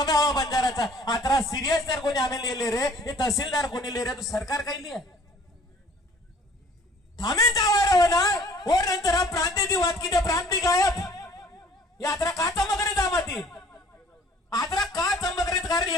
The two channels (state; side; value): normal; both; correlation 0.54